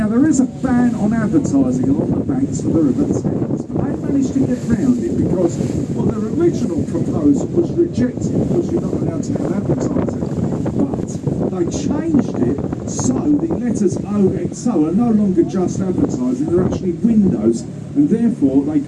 there is a ban on advertising along the banks of the River Thames, but they managed to get round it because, well, their original proposal was rejected because you're not allowed to have advertising. But they changed it so the letters OXO are no longer just advertising, they're actually windows, and therefore they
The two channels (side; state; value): both; identical; correlation 1.00